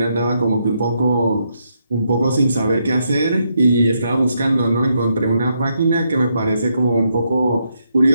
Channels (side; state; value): both; inverted; correlation -0.79